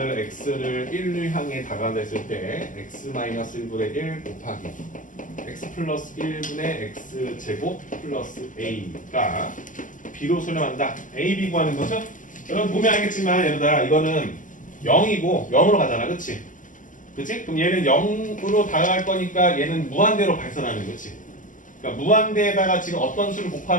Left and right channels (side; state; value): right; late; 0.38 ms